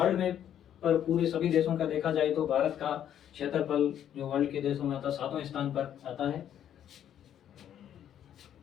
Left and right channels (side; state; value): right; quieter; 10.1 dB